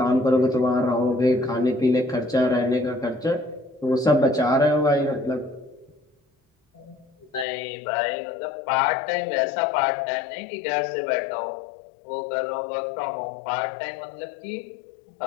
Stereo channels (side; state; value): right; drops out; at 7.5 s